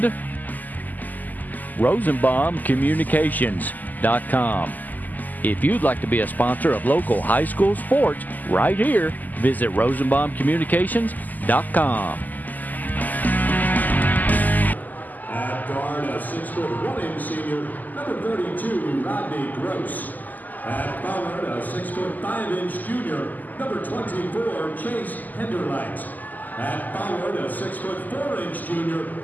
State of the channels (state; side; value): late; right; 0.083 ms